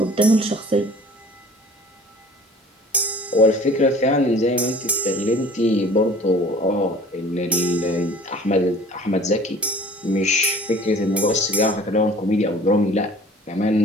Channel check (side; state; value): both; normal; correlation 0.47